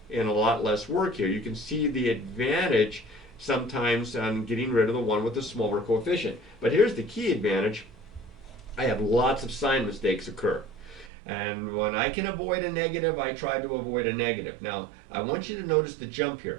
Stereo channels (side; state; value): left; drops out; at 11.1 s